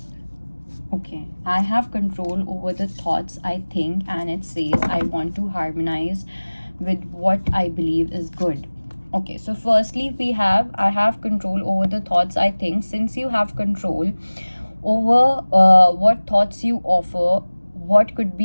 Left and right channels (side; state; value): both; inverted; correlation -1.00